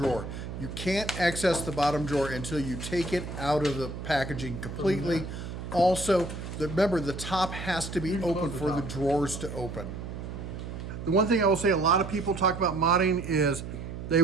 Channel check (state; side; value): noise; right; hum, 8 dB below the sound